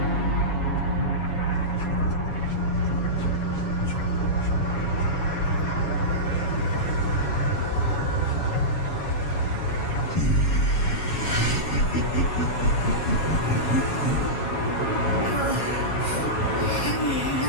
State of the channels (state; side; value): late; right; 7.2 ms